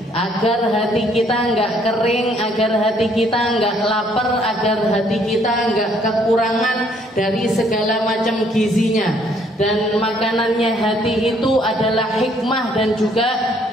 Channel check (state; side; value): normal; both; correlation 0.65